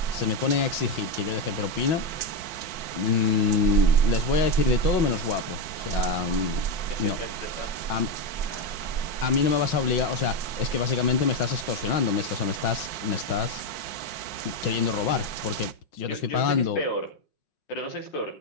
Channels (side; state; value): right; late; 5.5 ms